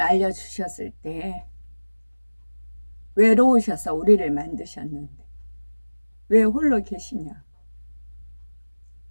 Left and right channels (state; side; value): inverted; both; correlation -1.00